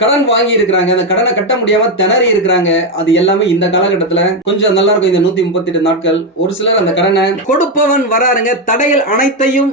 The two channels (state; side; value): normal; both; correlation 0.07